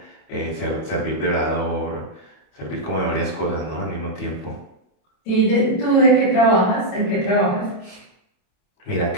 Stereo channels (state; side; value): late; right; 28 ms